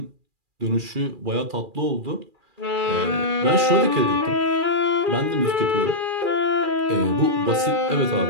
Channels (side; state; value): left; late; 2.4 ms